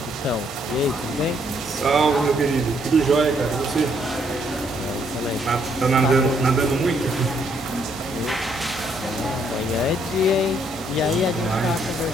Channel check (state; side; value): normal; both; correlation 0.70